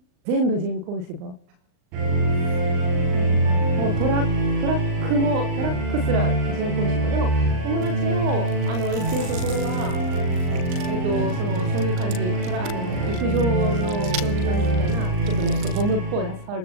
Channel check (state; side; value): late; left; 39 ms